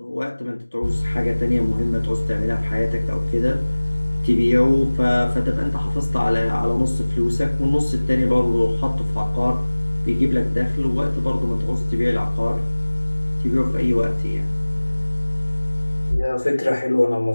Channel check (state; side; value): inverted; both; correlation -1.00